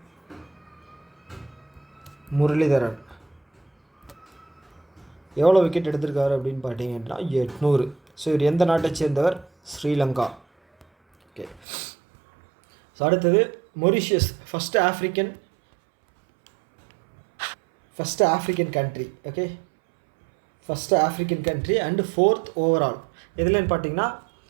முரளிதரன் எவ்வளோ விக்கெட் எடுத்திருக்காரு அப்படின்னு பார்த்தீங்க அப்படின்னா 800. ஸோ இவர் எந்த நாட்டை சேர்ந்தவர், ஸ்ரீலங்கா. ஓகே, ஸோ அடுத்தது Mauritius, first African country. Okay, first African country and 4th overall. எதுலன்னு பார்த்தீங்கன்னா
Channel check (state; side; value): drops out; left; at 11.7 s